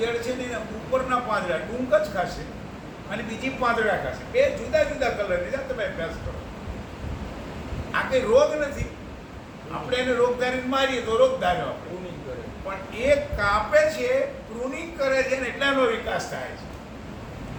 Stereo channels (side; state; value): both; identical; correlation 1.00